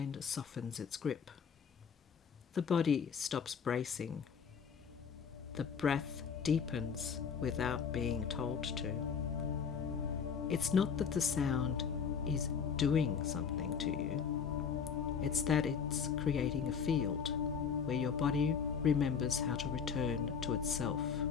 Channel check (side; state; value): right; quieter; 6.6 dB